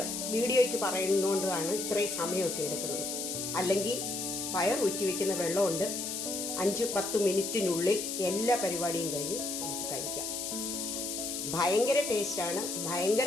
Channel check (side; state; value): left; noise; hiss, 4 dB below the sound